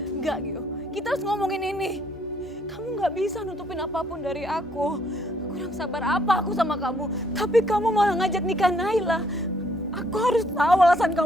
Gio. Kita harus ngomongin ini. Kamu gak bisa nutupin apapun dari aku. Kurang sabar apa aku sama kamu. Tapi kamu malah ngajak nikah Naila. Aku harus tahu alasan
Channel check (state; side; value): noise; right; hum, 30 dB below the sound